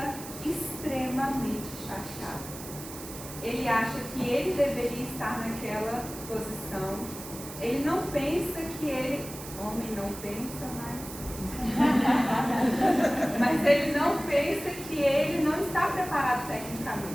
extremamente chateado. Ele acha que ele deveria estar naquela posição. Ele não pensa que ele... Homem não pensa, mas ele não pensa que ele não está preparado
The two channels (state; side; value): noise; right; hiss, 12 dB below the sound